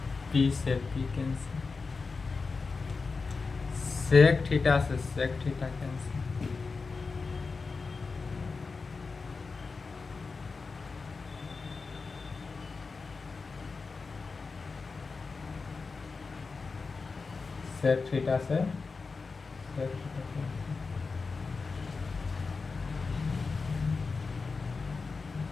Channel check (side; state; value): right; quieter; 4.4 dB